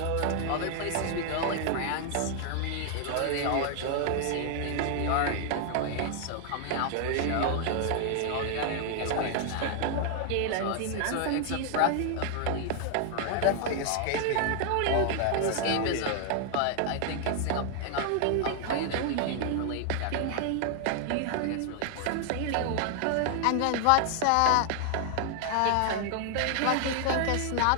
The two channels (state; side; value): different; both; correlation 0.00